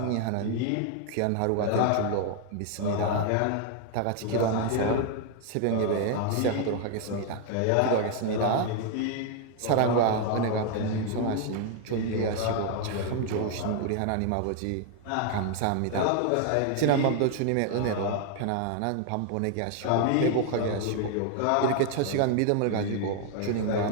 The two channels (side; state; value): both; different; correlation 0.00